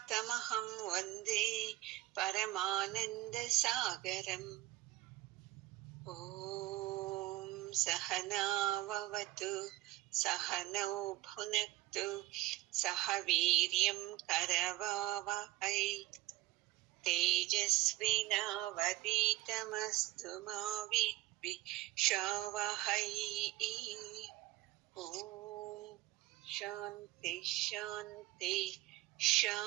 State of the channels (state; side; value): quieter; left; 17.0 dB